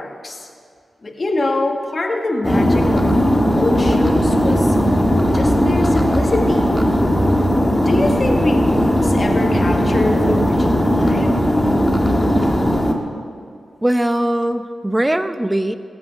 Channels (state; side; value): normal; both; correlation 0.94